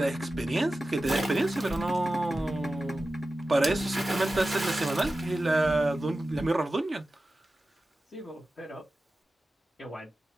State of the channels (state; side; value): normal; both; correlation 0.94